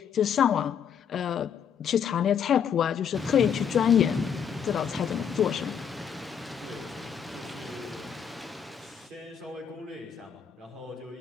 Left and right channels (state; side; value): quieter; right; 7.8 dB